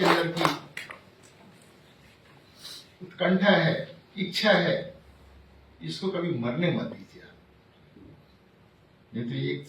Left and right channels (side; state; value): both; identical; correlation 1.00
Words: अंदर की उत्कंठा है, इच्छा है, इसको कभी मरने मत दीजिए। नहीं तो एक